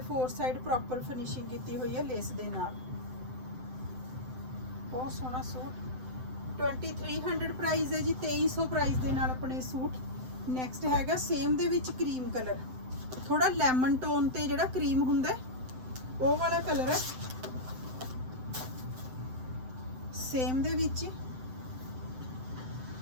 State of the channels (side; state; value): left; late; 7.8 ms